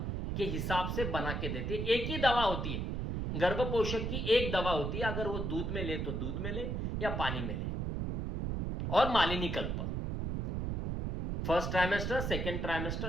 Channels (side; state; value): right; noise; rumble, 1 dB below the sound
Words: के हिसाब से बना के देते। एक ही दवा होती है, गर्भ पोषक की एक दवा होती है, अगर वो दूध में ले तो दूध में ले या पानी में ले। और मालिनी कल्प, first trimester, second